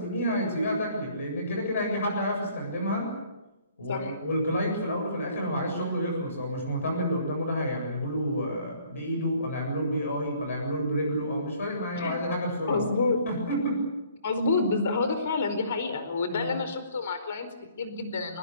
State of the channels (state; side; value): inverted; both; correlation -0.59